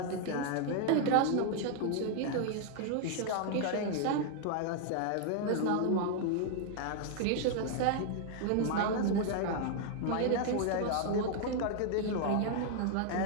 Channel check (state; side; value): different; both; correlation 0.00